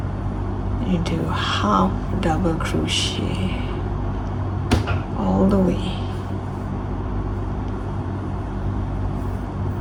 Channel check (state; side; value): identical; both; correlation 1.00